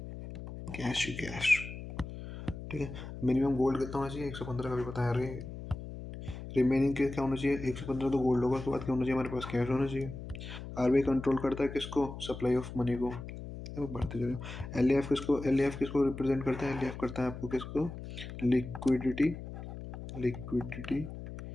कैश ही कैश, ठीक है। मिनिमम गोल्ड कितना होना चाहिए, 115 का भी बताया रे। रिमेनिंग क्या होना चाहिए, 115 तो गोल्ड होगा, उसके बाद क्या होना चाहिए हमारे पास, कैश होना चाहिए। आरबीआई कंट्रोल करता है किसको, सप्लाई ऑफ मनी को। बढ़ते चलो। एल किसको रिप्रेजेंट करता है, एल करता है आपको किसको, लिक्विडिटी, लिक्विडिटी,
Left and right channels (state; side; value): noise; left; hum, 10 dB below the sound